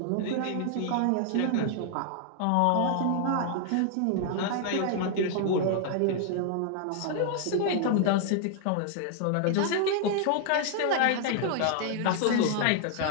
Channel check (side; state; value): both; different; correlation 0.00